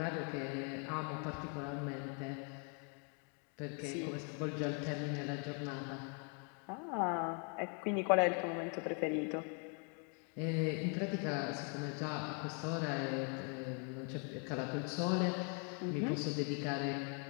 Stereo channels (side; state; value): right; quieter; 39.2 dB